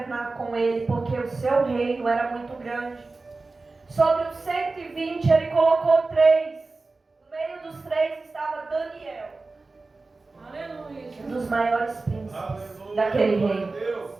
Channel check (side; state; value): left; quieter; 3.6 dB